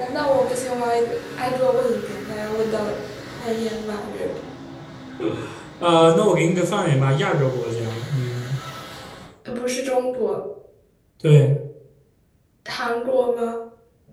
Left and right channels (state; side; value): identical; both; correlation 1.00